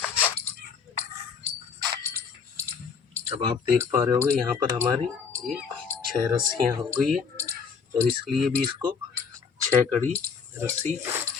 अब आप देख पा रहे होंगे यहाँ पर हमारी ये 6 रस्सियाँ हो गई है और इसलिए भी इसको 6 कड़ी रस्सी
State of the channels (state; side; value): quieter; right; 5.9 dB